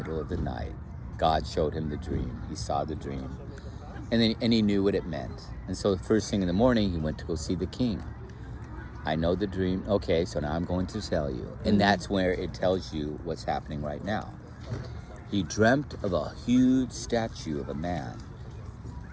of the night. God showed him the dream. He saw the dream. And he knew what it meant. And so the first thing in the morning, he went to go see the king. I know the dream. Okay, so now I'm going to tell you. And that's where it tells you what's happening right now. He dreamt of a huge statue of a man.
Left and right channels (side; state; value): both; identical; correlation 1.00